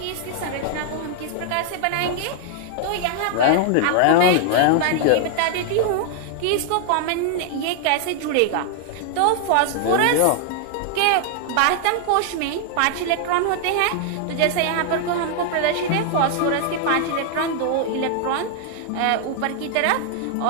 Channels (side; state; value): both; different; correlation 0.00